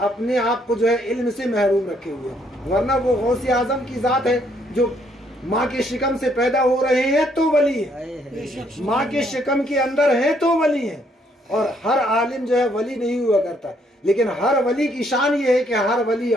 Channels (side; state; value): both; normal; correlation 0.69